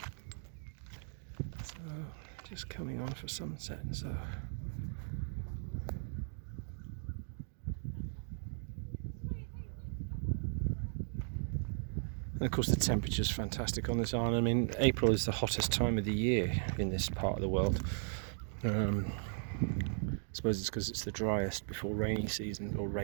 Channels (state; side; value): silent; left; digital silence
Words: So just coming on for sunset, so and of course the temperature's fantastic on this island. I mean, April is the hottest time of the year in this part of the world. I suppose it's because it's the driest before rainy season, or